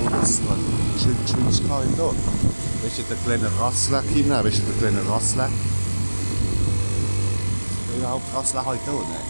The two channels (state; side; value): inverted; both; correlation -1.00